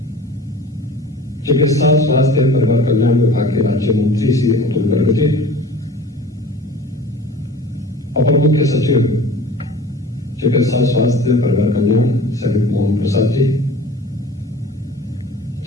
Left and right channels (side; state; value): both; normal; correlation 0.42